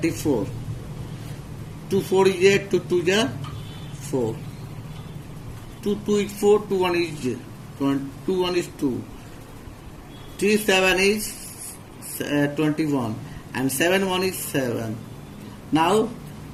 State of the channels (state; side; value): identical; both; correlation 1.00